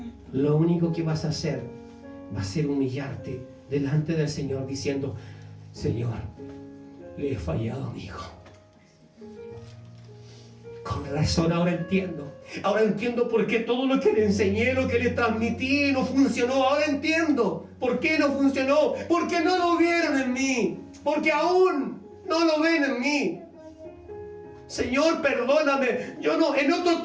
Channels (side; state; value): both; identical; correlation 1.00